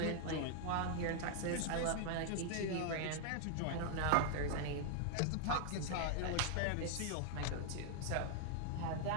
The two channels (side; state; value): both; different; correlation 0.00